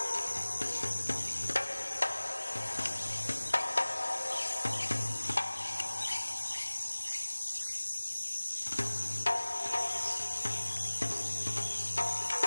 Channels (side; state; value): both; inverted; correlation -1.00